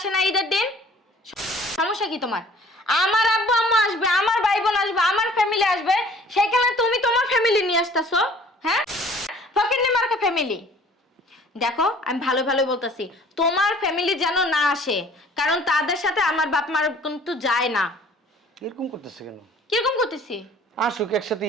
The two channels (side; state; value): both; normal; correlation 0.52